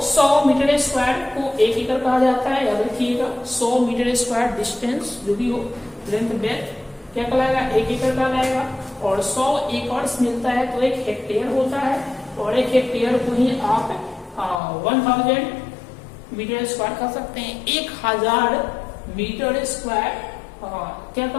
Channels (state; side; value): drops out; right; at 14.6 s